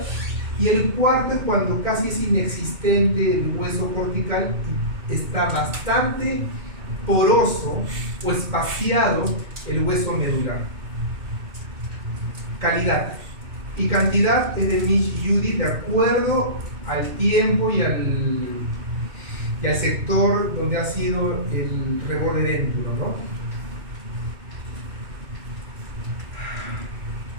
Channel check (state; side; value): late; left; 2.6 ms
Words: Y el cuarto es cuando casi es inexistente el hueso cortical y está bastante poroso o espaciado el hueso medular. Calidad y cantidad es de Mitch y Judy de acuerdo al tiempo y al sector donde ha sido el reborde dentro, ¿no?